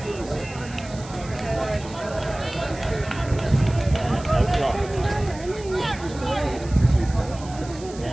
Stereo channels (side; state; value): right; noise; hiss, 18 dB below the sound